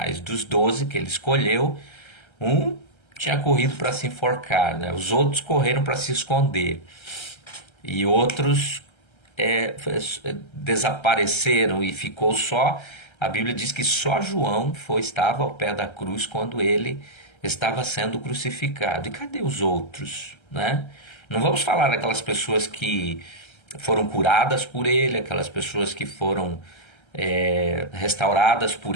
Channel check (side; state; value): right; late; 1.3 ms